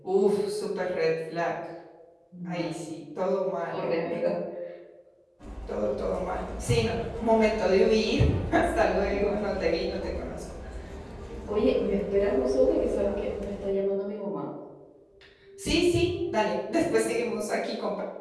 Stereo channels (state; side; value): identical; both; correlation 1.00